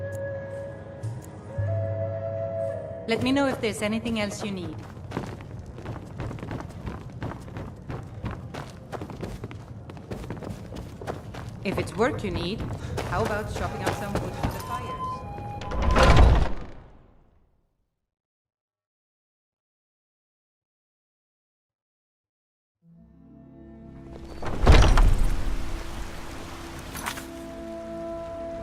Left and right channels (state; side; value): identical; both; correlation 1.00